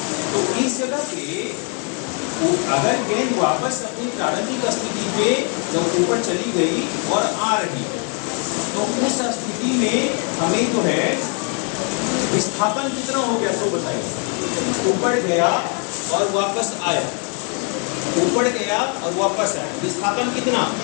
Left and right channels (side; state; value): right; quieter; 39.0 dB